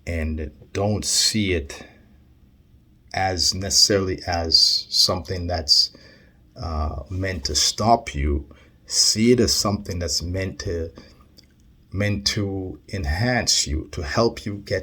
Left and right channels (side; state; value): both; identical; correlation 1.00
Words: and don't see it as necessarily as something that's meant to stop you. See it as something that's meant to enhance you, to help you